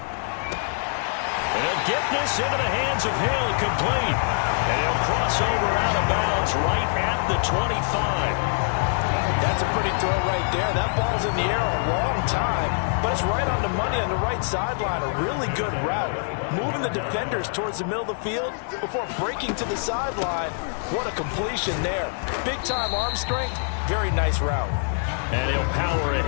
they'll get this into the hands of Hill, complete. And he'll cross over out of bounds right at the 25. That's a pretty throw right there. That ball's in the air a long time, but it's right on the money on the right sideline. A really good route. Moving the defenders towards the middle of the field before breaking to the sideline. What a completion there. Big-time arm strength. Very nice route. And he'll power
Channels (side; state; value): right; silent; 62 dB below the other